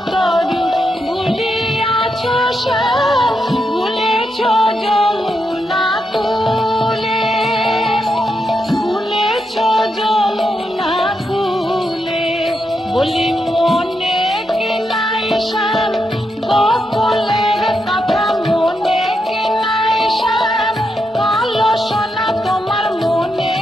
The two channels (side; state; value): both; normal; correlation 0.83